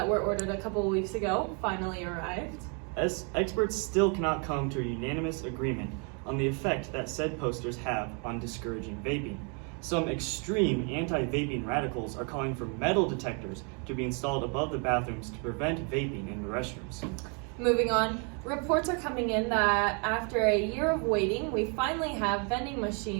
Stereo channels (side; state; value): left; quieter; 36.9 dB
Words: were ordered a couple of weeks ago finally arrived. As experts still cannot come to a unanimous agreement on the effect that said posters have on discouraging vaping. Some extreme anti-vaping radicals are calling for metal detectors to be installed above the bathrooms to prevent vaping in the restrooms. Moving on, reports are coming in that after a year of waiting, we finally have vending